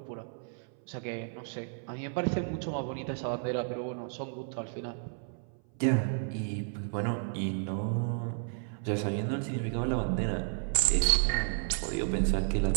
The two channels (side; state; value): left; silent; 56 dB below the other